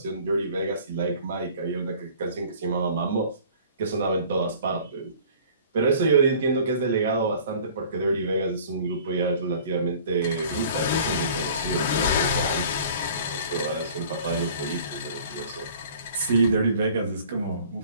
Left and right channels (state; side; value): inverted; both; correlation -0.49